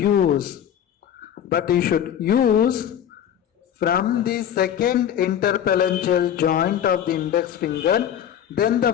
But you should use from the second interphalangeal joint of the index finger, then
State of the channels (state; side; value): quieter; right; 9.8 dB